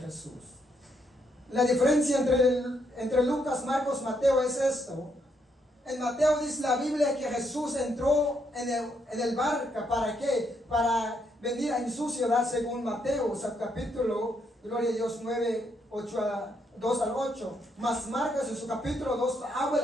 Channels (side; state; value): both; normal; correlation 0.76